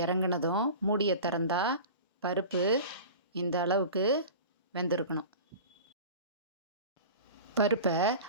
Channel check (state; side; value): inverted; both; correlation -0.36